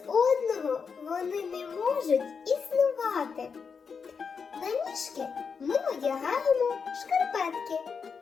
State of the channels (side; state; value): right; quieter; 5.8 dB